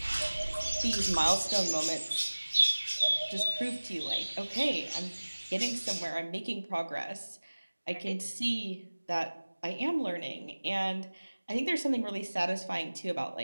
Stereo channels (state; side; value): inverted; both; correlation -1.00